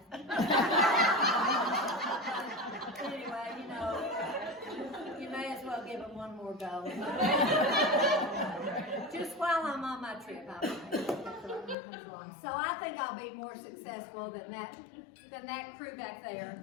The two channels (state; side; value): drops out; right; at 11.8 s